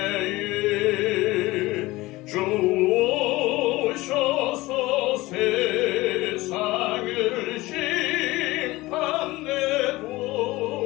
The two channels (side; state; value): right; quieter; 19.7 dB